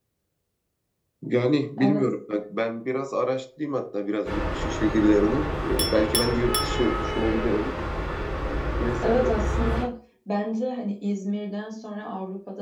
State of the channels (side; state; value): both; identical; correlation 1.00